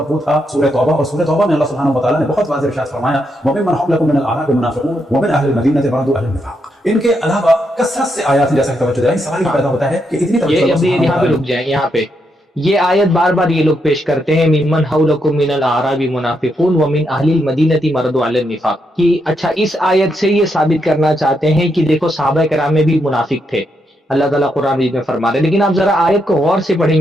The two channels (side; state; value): both; normal; correlation 0.80